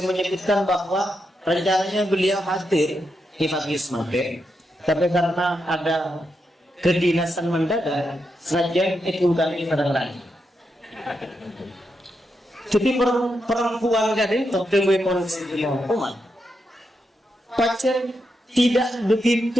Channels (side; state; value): both; normal; correlation 0.84